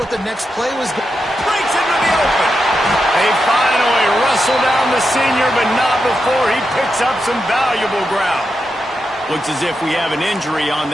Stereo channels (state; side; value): normal; both; correlation 0.87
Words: the next play was. Breaks into the open. They finally wrestle down the senior, but not before he picks up some valuable ground. Looks as if we have an injury on